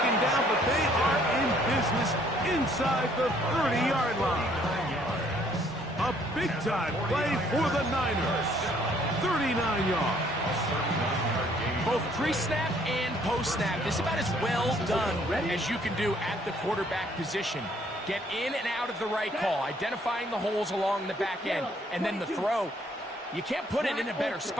down, but they are in business inside the 30-yard line. A big-time play for the Niners. 39 yards. Both pre-snap and post-snap. This is about as well done as you can do at the quarterback position. Get in and out of the right call, identifying the holes along the back end, and then the throw. You can't put it in a better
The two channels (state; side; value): normal; both; correlation 0.63